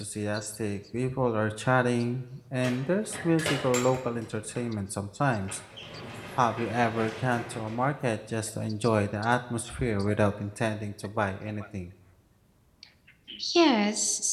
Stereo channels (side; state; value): both; identical; correlation 1.00